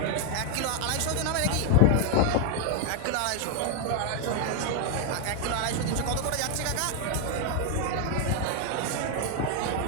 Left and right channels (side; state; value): both; different; correlation 0.00